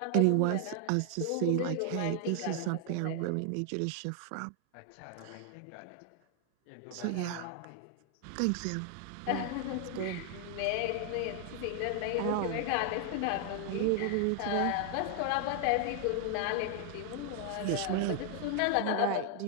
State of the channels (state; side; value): different; both; correlation 0.00